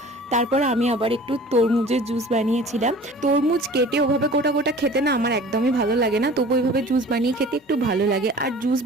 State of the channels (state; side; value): normal; both; correlation 0.44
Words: তারপর আমি আবার একটু তরমুজের জুস বানিয়েছিলাম। তরমুজ কেটে ওভাবে গোটা গোটা খেতে না আমার একদমই ভালো লাগে না, তবু ওইভাবে জুস বানিয়ে খেতে একটু ভালো লাগে। আর জুস